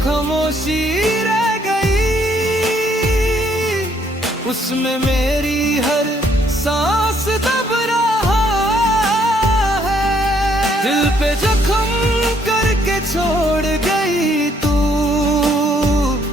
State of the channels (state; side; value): normal; both; correlation 0.68